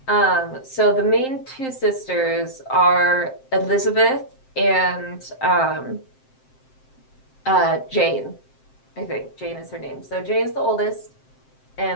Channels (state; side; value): late; right; 7.6 ms